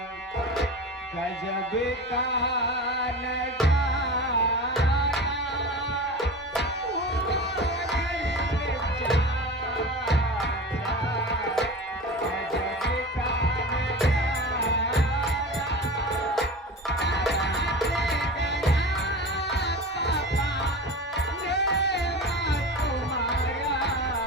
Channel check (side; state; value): both; normal; correlation 0.32